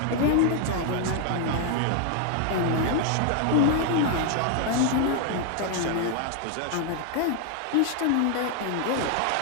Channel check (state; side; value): different; both; correlation 0.00